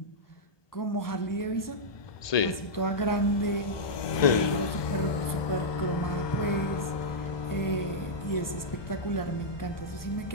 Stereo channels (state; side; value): late; right; 1.2 ms